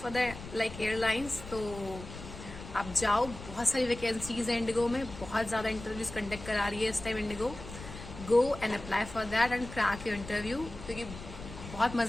for the like airlines, तो आप जाओ। बहुत सारी वैकेंसीज है इंडिगो में, बहुत ज़्यादा इंटरव्यूज कंडक्ट करा रही है इस time Indigo. Go and apply for that and crack your interview, क्योंकि बहुत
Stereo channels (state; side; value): noise; left; rumble, 13 dB below the sound